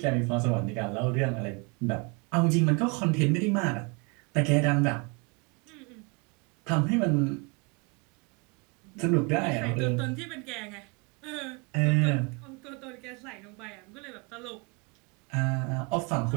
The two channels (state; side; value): quieter; left; 31.0 dB